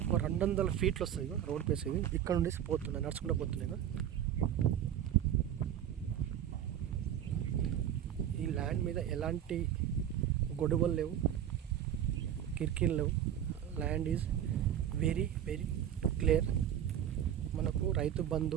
ఒక 200 ఫీట్లు వస్తాయి రోడ్ ప్లేస్. ఇవి ఇక్కడ నుండి పోతున్నాయి, నడుచుకుంటూ పోతున్నాయి. ఈ ల్యాండ్ మీద ఎలాంటి గొడవలు లేవు, కిరికీలు లేవు. Land is very very clear. మనకు రైతు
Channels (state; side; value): quieter; left; 10.3 dB